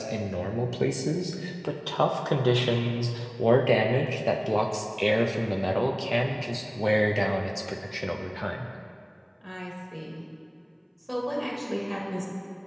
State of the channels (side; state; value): both; identical; correlation 1.00